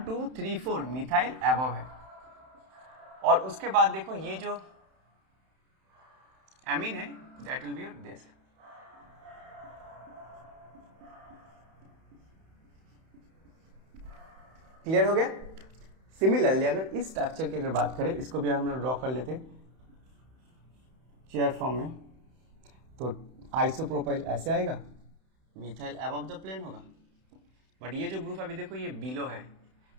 2 3 4 मिथाइल एबव है। और उसके बाद देखो ये जो एमीन है that will be your this. Clear हो गया। सिमिलरली अगर इस स्ट्रक्चर की अगर बात करें, इसको भी हम लोग ड्रॉ कर लेते चेयर फॉर्म में, तो आइसोप्रोपाइल ऐसे आएगा, मिथाइल अबव द प्लेन होगा। बट ये जो ग्रुप अभी देखो ये बिलो है,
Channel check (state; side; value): late; left; 31 ms